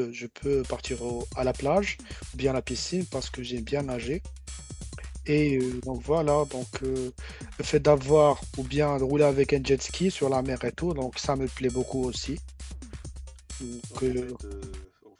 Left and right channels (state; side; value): identical; both; correlation 1.00